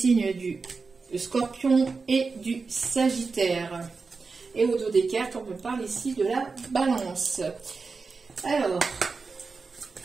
du Scorpion et du Sagittaire. Et au dos des cartes, on me parle ici de la Balance. Alors,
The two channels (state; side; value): quieter; left; 4.5 dB